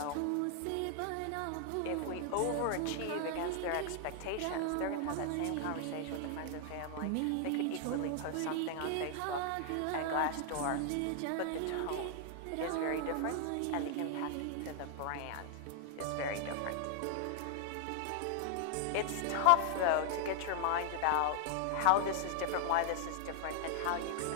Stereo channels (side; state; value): both; different; correlation 0.00